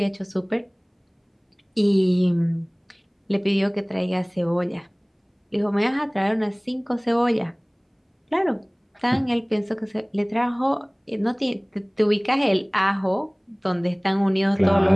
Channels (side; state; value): both; identical; correlation 1.00